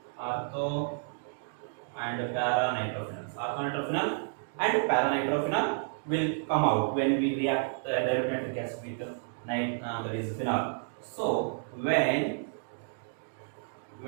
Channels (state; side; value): silent; left; digital silence